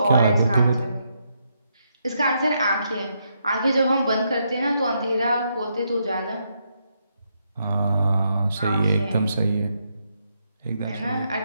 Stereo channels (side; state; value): both; inverted; correlation -0.79